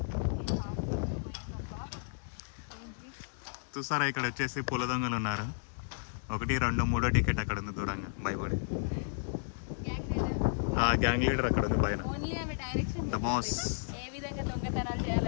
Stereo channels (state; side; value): silent; right; digital silence